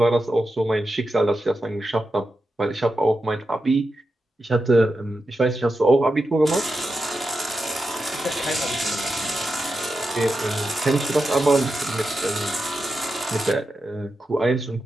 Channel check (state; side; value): normal; both; correlation 0.89